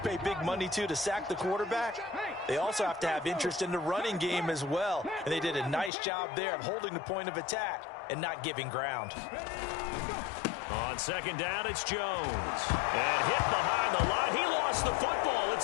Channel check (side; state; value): right; drops out; at 5.9 s